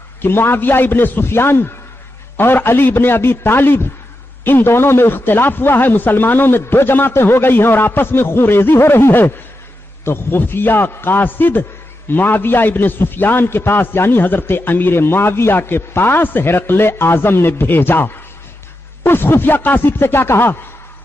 کہ معاویہ ابن سفیان اور علی ابن ابی طالب ان دونوں میں اختلاف ہوا ہے، مسلمانوں میں دو جماعتیں ہو گئی ہیں اور آپس میں خون ریزی ہو رہی ہے، تو خفیہ قاصد معاویہ ابن سفیان کے پاس یعنی حضرت امیر معاویہ کے پاس ہرقل اعظم نے بھیجا. اس خفیہ قاصد سے کیا کہا؟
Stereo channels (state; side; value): normal; both; correlation 0.88